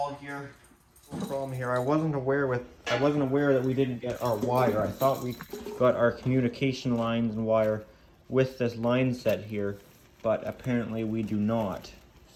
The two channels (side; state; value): both; identical; correlation 1.00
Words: here. Problem here, I wasn't aware that we didn't get our wire. I thought we got our communication lines and wire with this line set here, but apparently we do not.